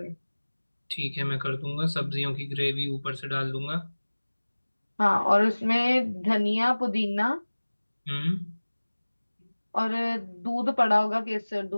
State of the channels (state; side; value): inverted; both; correlation -1.00